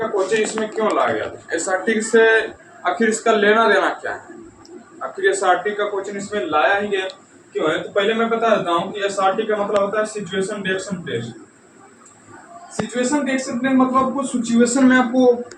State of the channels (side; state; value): both; identical; correlation 1.00